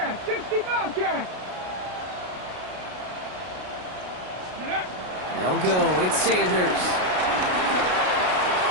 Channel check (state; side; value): late; left; 33 ms